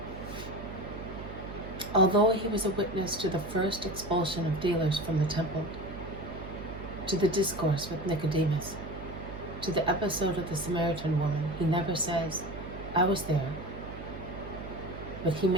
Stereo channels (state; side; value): noise; right; hum, 11 dB below the sound